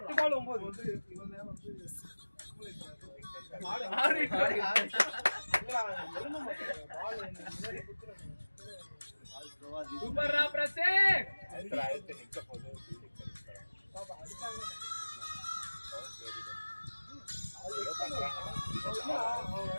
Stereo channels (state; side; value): inverted; both; correlation -1.00